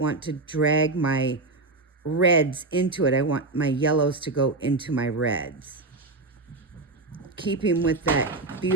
to drag my reds into it. I want my yellows to go into my reds. Keeping with that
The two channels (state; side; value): quieter; left; 3.3 dB